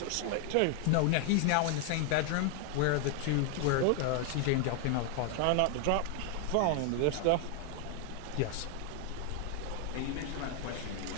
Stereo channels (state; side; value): different; both; correlation 0.00